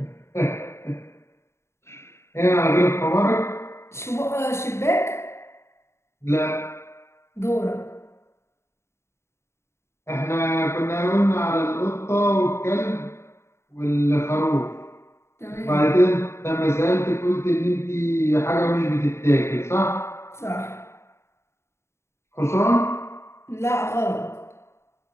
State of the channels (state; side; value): late; right; 0.13 ms